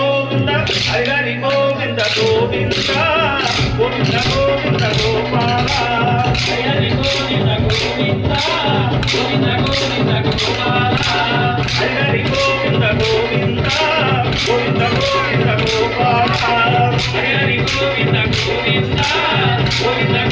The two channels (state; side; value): identical; both; correlation 1.00